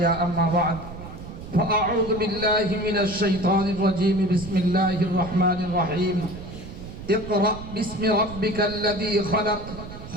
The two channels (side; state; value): right; noise; rumble, 12 dB below the sound